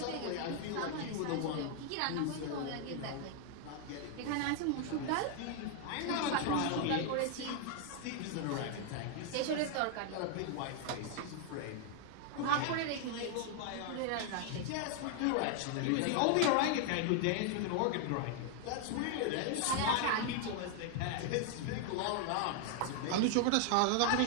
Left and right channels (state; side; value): different; both; correlation 0.00